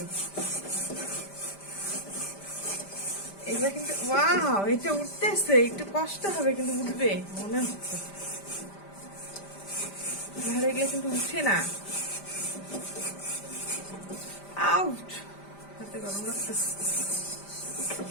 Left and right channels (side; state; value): right; late; 5.1 ms